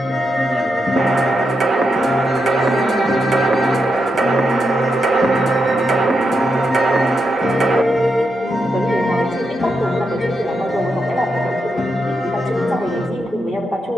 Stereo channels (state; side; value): normal; both; correlation 0.85